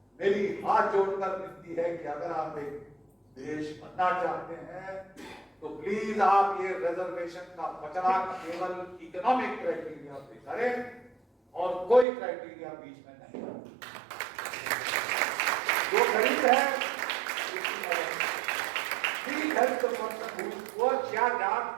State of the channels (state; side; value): drops out; left; at 12.1 s